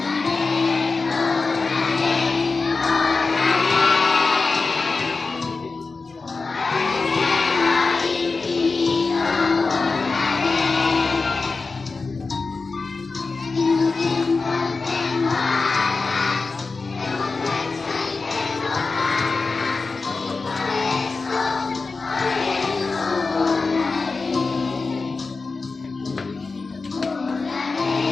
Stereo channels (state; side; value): quieter; right; 4.1 dB